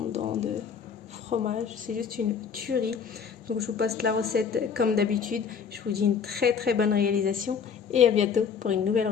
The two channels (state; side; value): quieter; right; 6.6 dB